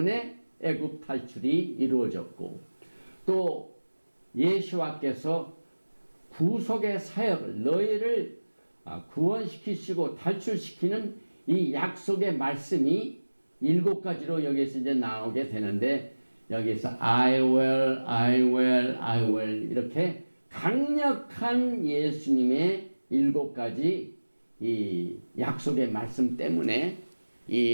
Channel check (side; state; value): both; inverted; correlation -1.00